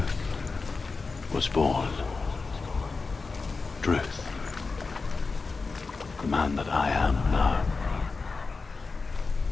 was born. Druth. The man that I am now.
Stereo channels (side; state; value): right; quieter; 4.2 dB